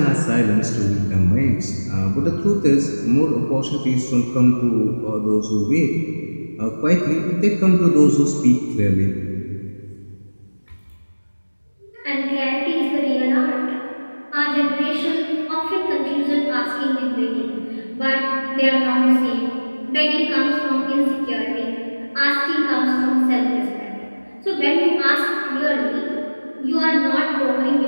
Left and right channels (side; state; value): both; inverted; correlation -1.00